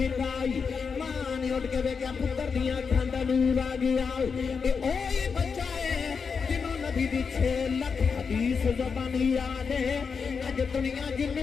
ماں نے اٹھ کے ویکھیا پتر دی اکھاں دا نور آ گیا اے اوہی بچہ ہے جنوں نبی دی 6 لاکھ حدیث زبان یاد ہے اج دنیا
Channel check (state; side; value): quieter; right; 5.7 dB